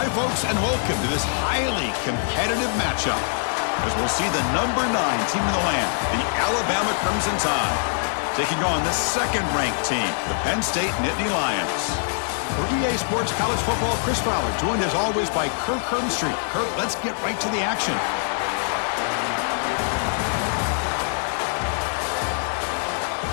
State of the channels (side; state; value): right; silent; 62 dB below the other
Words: folks, and welcome to this highly competitive matchup, as we'll see the number 9 team in the land, the Alabama Crimson Tide, taking on the second-ranked team, the Penn State Nittany Lions. For EA Sports College Football, Chris Fowler, joined as always by Kirk Herbstreit. Kirk, let's get right to the action.